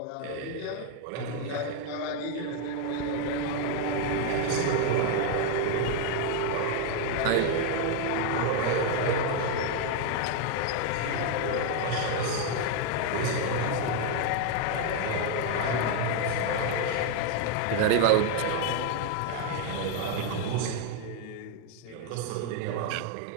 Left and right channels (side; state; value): both; different; correlation 0.01